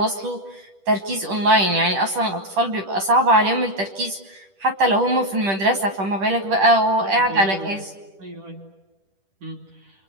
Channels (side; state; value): left; late; 10 ms